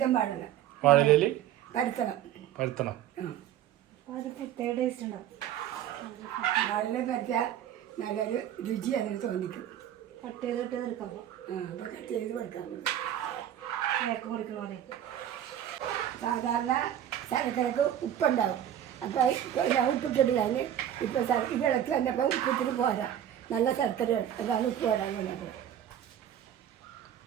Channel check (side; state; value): left; quieter; 10.8 dB